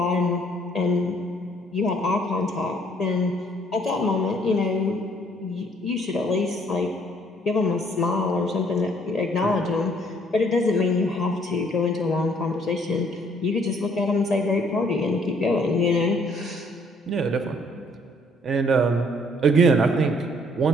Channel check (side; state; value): both; normal; correlation 0.63